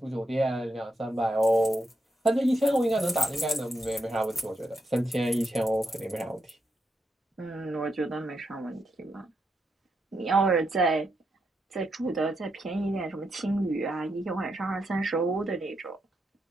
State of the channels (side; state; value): both; normal; correlation 0.83